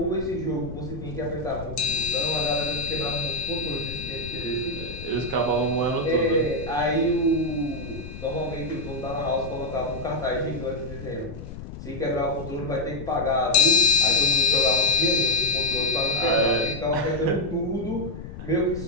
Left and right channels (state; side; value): noise; left; rumble, 11 dB below the sound